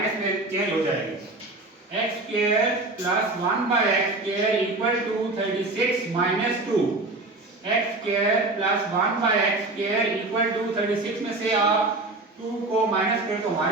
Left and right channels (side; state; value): left; quieter; 3.0 dB